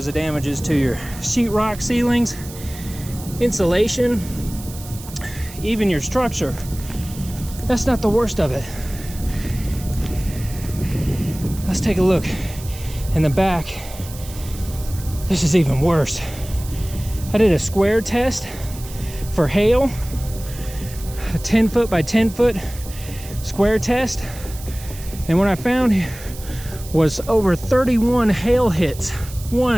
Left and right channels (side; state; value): right; noise; hiss, 16 dB below the sound